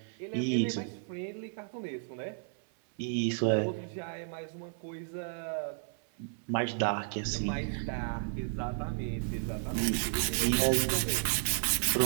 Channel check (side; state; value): left; silent; 56 dB below the other